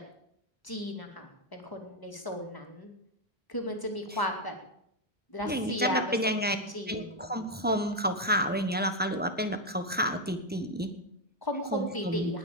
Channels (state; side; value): normal; both; correlation 0.04